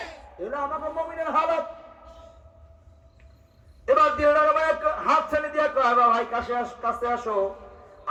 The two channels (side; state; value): both; identical; correlation 1.00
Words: এটা আমাদের মুমিনের হালত। এবার দিলটার হাত ছেড়ে দিয়া কয়, ভাই কাছে আসো,